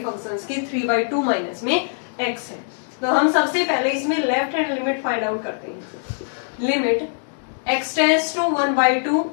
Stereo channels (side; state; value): right; silent; digital silence